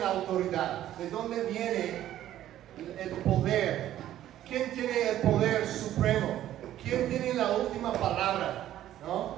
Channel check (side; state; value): left; quieter; 12.5 dB